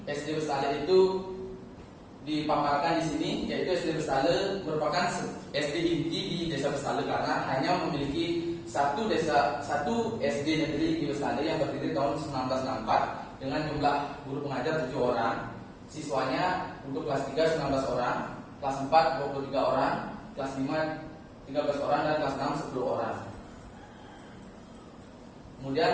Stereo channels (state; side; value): identical; both; correlation 1.00